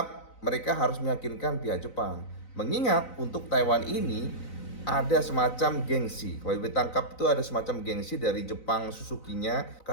mereka harus meyakinkan pihak Jepang. Mengingat untuk Taiwan ini ada semacam gengsi. Kalau IWB tangkap itu ada semacam gengsi dari Jepang Suzuki-nya,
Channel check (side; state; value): right; late; 4.0 ms